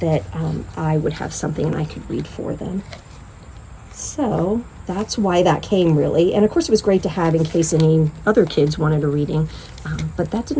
I would have something and I could read for them. So that's why that came, really. And of course it was great to have in case any other kids wanted a reading, but that did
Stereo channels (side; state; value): both; identical; correlation 1.00